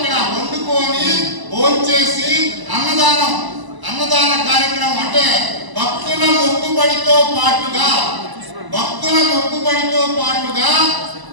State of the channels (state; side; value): late; left; 1.0 ms